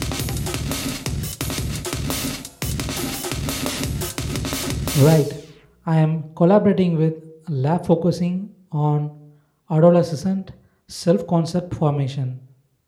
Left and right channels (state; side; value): identical; both; correlation 1.00